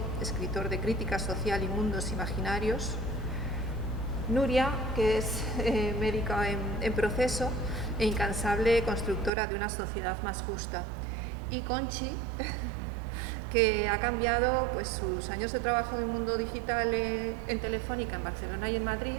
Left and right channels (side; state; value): left; drops out; at 9.3 s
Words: escritor de crítica social y mundos imaginarios. Nuria, que es médica en proceso e incansable constructora de una sociedad más justa. Y Conchi, que ha cambiado pues, sus años de trabajo en el mundo digital en Telefónica, en Barcelona y en Madrid,